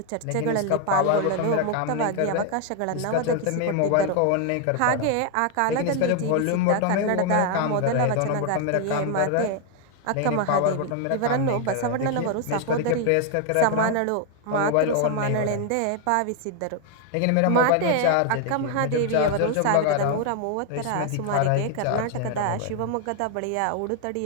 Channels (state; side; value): different; both; correlation 0.00